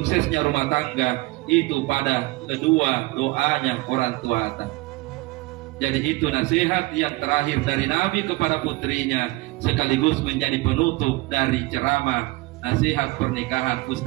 rumah tangga itu pada kedua doanya orang tuata. Jadi itu nasihat yang terakhir dari Nabi kepada putrinya, sekaligus menjadi penutup dari ceramah nasihat pernikahan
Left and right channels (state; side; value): quieter; left; 21.4 dB